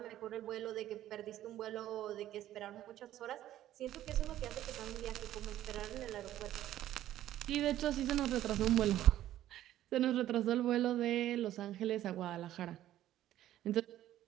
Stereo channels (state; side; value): quieter; left; 13.0 dB